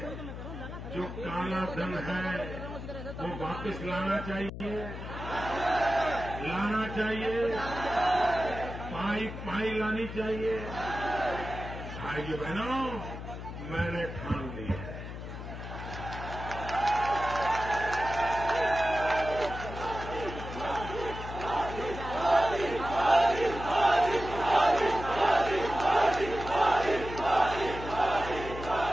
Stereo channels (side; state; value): left; noise; hum, 9 dB below the sound